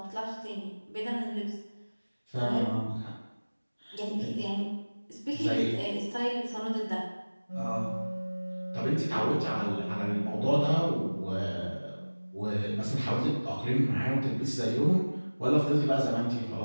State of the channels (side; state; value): both; inverted; correlation -1.00